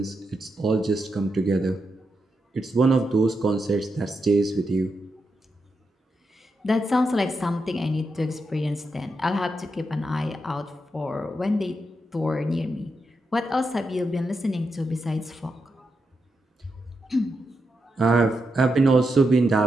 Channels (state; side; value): normal; both; correlation 0.85